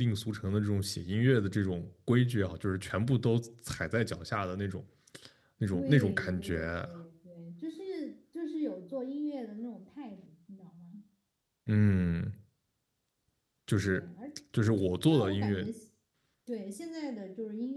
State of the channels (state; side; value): identical; both; correlation 1.00